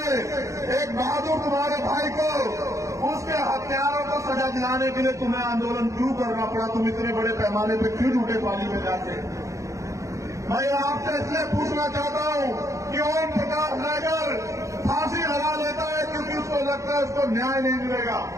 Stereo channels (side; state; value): left; late; 0.15 ms